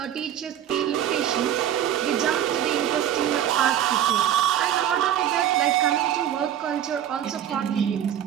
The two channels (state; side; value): quieter; left; 10.6 dB